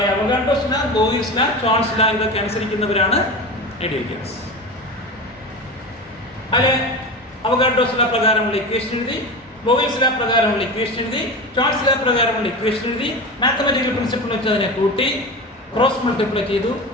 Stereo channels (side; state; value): both; normal; correlation 0.26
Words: Avogadro's law, Boyle's law, Charles law ഇതൊക്കെ അനുസരിക്കുന്നവരാണ് ഐഡിയൽ ഗ്യാസ്. അതിലെ അവോഗാഡ്രോസ് ലോ പ്രകാരമുള്ള ഇക്വേഷൻ എഴുതി, ബോയിൽസ് ലോ പ്രകാരമുള്ള ഇക്വേഷൻ എഴുതി, ചോൾസ് ലോ പ്രകാരമുള്ള ഇക്വേഷൻ എഴുതി, മാത്തമാറ്റിക്കൽ പ്രിൻസിപ്പിൾ വെച്ച് അതിനെ കൂട്ടി ക്രോസ് മൾട്ടിപ്ലൈ ചെയ്തു,